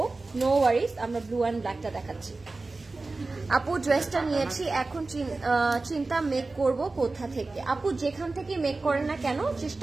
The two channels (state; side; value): quieter; left; 3.5 dB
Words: নো ওয়ারিজ, আমরা ব্লু অ্যান্ড ব্ল্যাকটা দেখাচ্ছি। আপু ড্রেসটা নিয়েছি, এখন চিন্তা মেক করব কোথা থেকে। আপু যেখান থেকে মেক করেন না কেন,